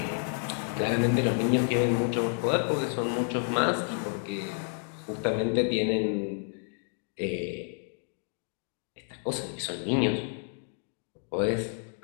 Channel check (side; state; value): right; silent; 58 dB below the other